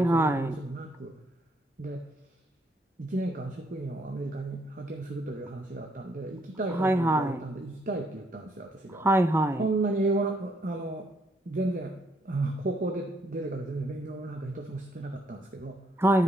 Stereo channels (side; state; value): both; normal; correlation 0.71